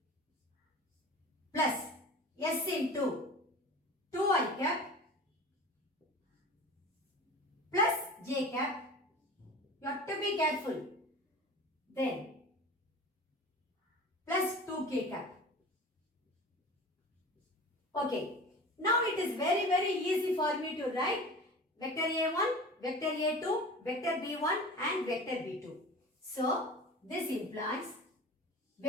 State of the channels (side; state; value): both; normal; correlation 0.37